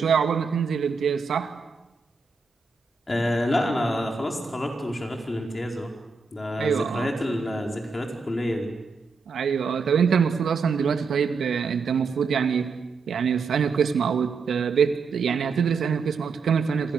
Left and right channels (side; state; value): left; quieter; 4.6 dB